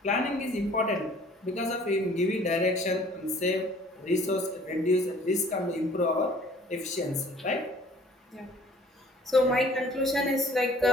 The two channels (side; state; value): both; normal; correlation 0.54